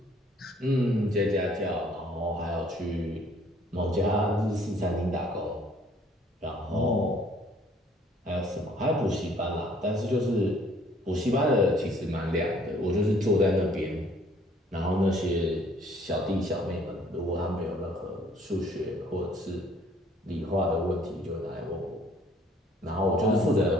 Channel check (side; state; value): both; normal; correlation 0.60